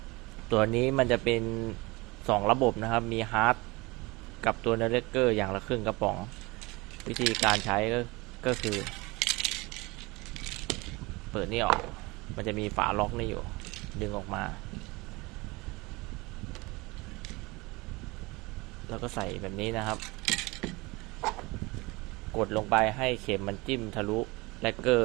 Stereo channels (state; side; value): quieter; left; 23.8 dB